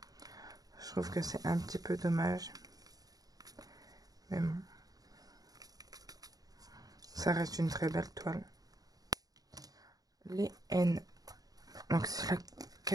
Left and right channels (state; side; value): late; left; 0.18 ms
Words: Je trouve que c'est un petit peu dommage. Mais bon, ça reste une très belle toile. Les N. Donc c'est la